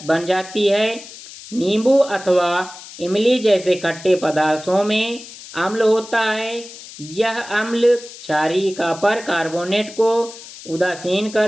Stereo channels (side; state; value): left; noise; hiss, 16 dB below the sound